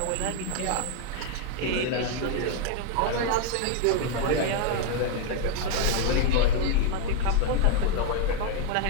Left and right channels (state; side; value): different; both; correlation 0.01